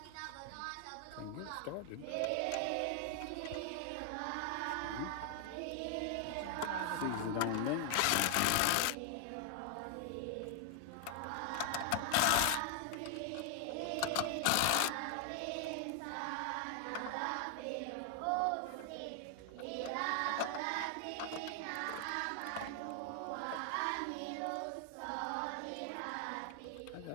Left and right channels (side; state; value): both; different; correlation 0.00